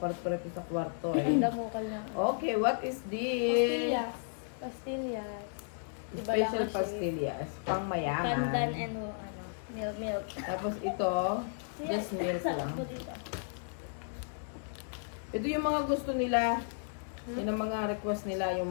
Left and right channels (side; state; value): right; silent; 55 dB below the other